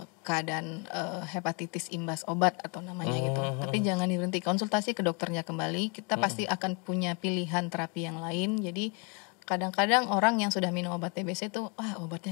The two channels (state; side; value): quieter; right; 31.1 dB